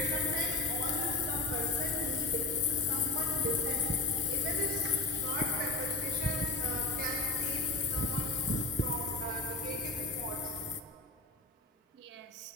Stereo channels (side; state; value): right; quieter; 3.3 dB